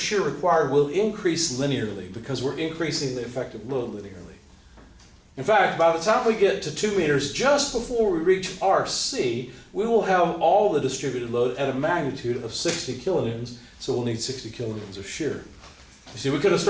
required will increase linearly because we're increasing the effective load linearly. In fact, by the time we get to 2 meters, just before we reach RC, we will have all the distributed load at a magnitude of 60 kilonewtons, so we'll need 60 kilonewtons of shear. You see, we could have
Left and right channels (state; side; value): identical; both; correlation 1.00